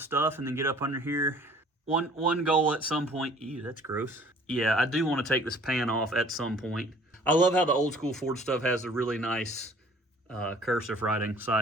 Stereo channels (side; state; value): both; normal; correlation 0.53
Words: and then get up under here. One goal at some point. Ew, that's gross. Yeah, I do want to take this pan off at some point. I love how the old school Ford stuff has a really nice cursive writing,